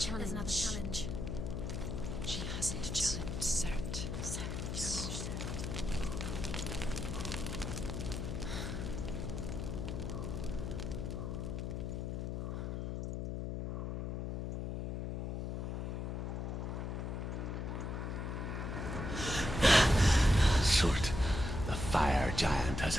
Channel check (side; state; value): left; noise; hum, 3 dB below the sound